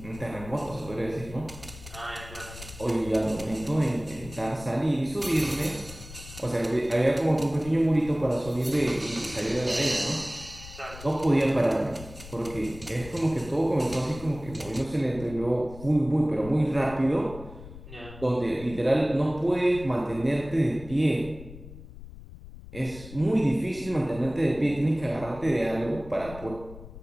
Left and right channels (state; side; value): noise; left; rumble, 15 dB below the sound